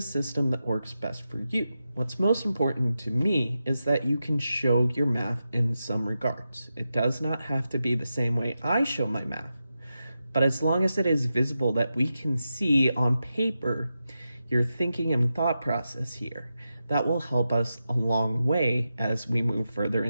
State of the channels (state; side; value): inverted; both; correlation -0.89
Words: system that works best for you. What's most important to me is that you can show your math in some regards. It does not have to be the same way I show my math, but as long as it is visible that we can see on paper your thinking and thought process here, that will help us a long way as we move further